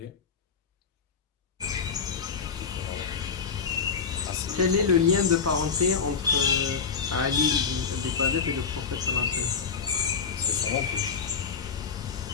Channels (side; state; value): right; quieter; 6.0 dB